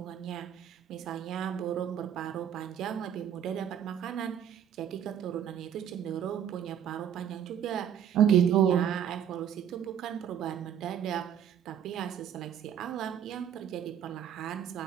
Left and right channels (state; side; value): quieter; left; 9.3 dB